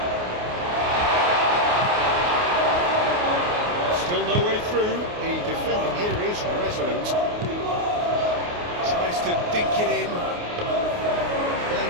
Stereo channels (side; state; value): left; late; 28 ms